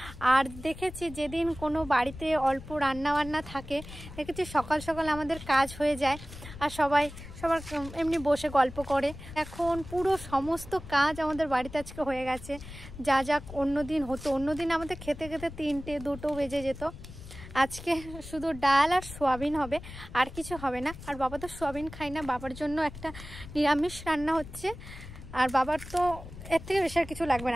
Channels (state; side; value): noise; left; rumble, 14 dB below the sound